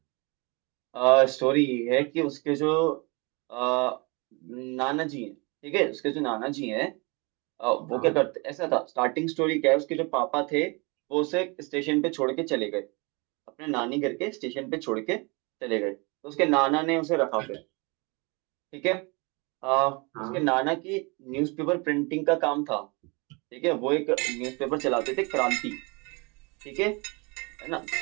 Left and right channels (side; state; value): left; quieter; 29.1 dB